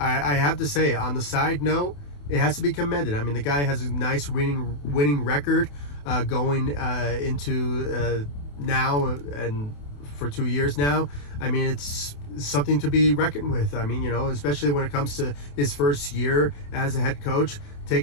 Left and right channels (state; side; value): late; right; 28 ms